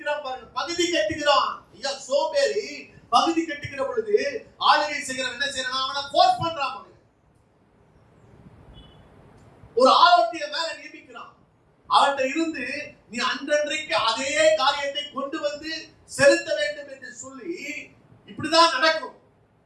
பாருங்க. பகுதி கட்டுகிறான். ஐயா சோம்பேறி பகுதி கட்டுகிற பொழுது ஆளுகை செய்கிறவன் என்ன செய்யறான்? அவனை போர்ஸ் பண்றான். ஒரு ஆரோக்கிய மேல நியமிக்கிறான். அவன்கிட்ட இருந்து நீ அன்றன்றைக்கு அதே காரியத்தை கொண்டு வந்து செலுத்த வேண்டும் என்று சொல்லி இப்படிதான் நடக்கும்.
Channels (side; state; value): both; identical; correlation 1.00